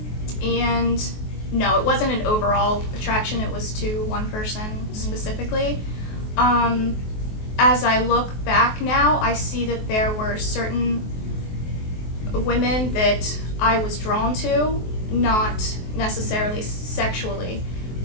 And no, it wasn't an overall attraction. It was to one person specifically. As I look back now, I see that there were certain women that I was drawn to, not necessarily sexually,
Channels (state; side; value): late; right; 23 ms